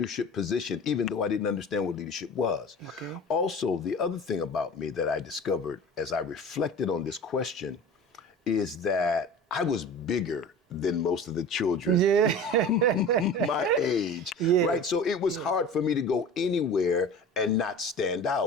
position, even though I didn't understand what leadership was. Okay. Also, the other thing about me that I discovered as I reflected on this question is that I was bigger than most of the children my age, right? So it was hard for me to go anywhere and not stand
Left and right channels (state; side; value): normal; both; correlation 0.37